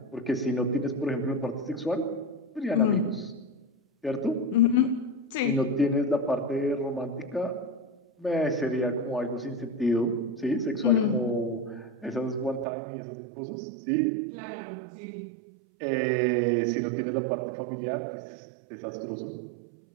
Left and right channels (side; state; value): left; drops out; at 12.7 s